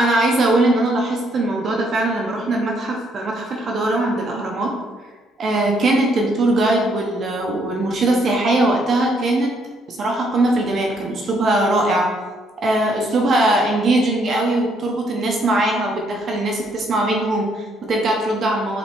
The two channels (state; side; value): normal; both; correlation 0.70